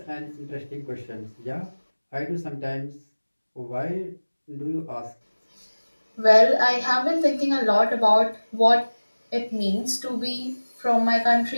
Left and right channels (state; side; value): inverted; both; correlation -1.00